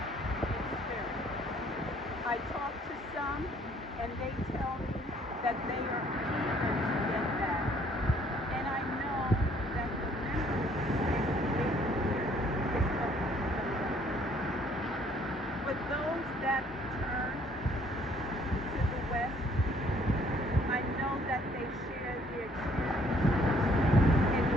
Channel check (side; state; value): both; normal; correlation 0.62